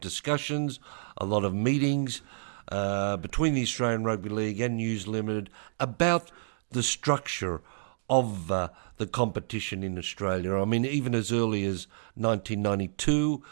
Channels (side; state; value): left; silent; digital silence